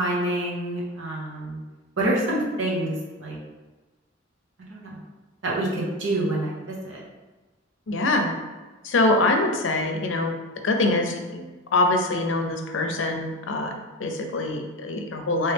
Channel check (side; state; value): both; normal; correlation 0.20